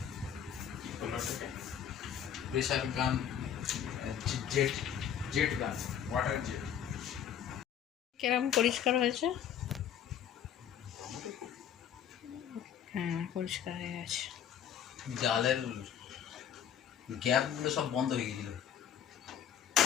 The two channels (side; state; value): right; quieter; 9.1 dB